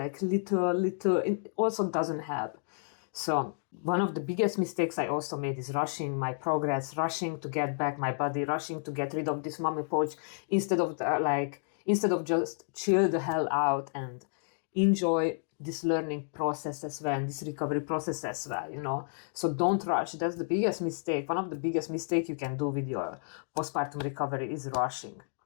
little, it also doesn't help. So one of the biggest mistakes I also made is rushing my progress, rushing to get back my body, rushing to get rid of this mommy pouch, instead of just chill the hell out and enjoy this learning process as well, and this recovery process as well, So don't rush. That's the biggest mistake. One of the biggest mistakes you can do with your postpartum recovery is rushing.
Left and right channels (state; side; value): silent; right; digital silence